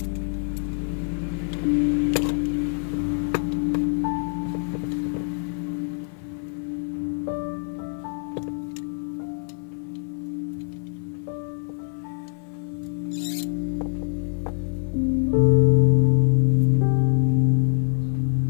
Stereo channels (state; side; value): silent; right; 56 dB below the other